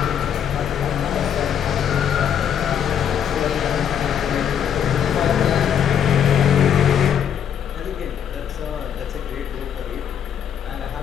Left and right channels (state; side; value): quieter; right; 8.7 dB